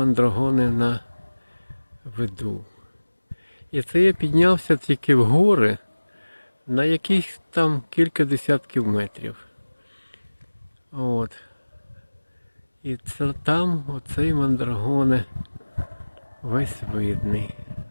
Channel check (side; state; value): both; inverted; correlation -1.00